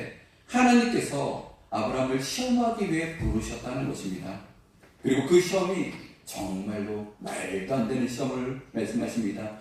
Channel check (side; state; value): both; identical; correlation 1.00